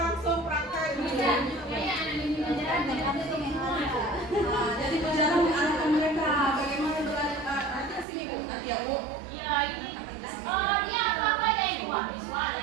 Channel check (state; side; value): drops out; left; at 8.1 s